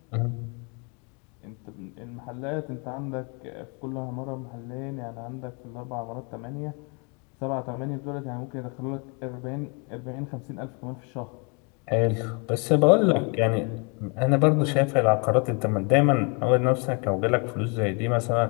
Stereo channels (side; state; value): right; quieter; 34.1 dB